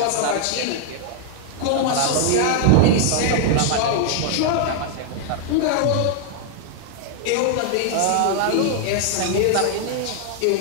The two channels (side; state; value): both; different; correlation 0.00